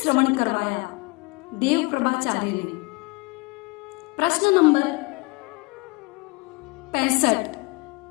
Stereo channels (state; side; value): quieter; right; 26.7 dB